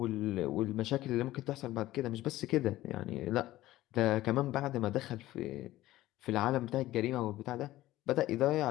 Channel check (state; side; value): quieter; right; 16.0 dB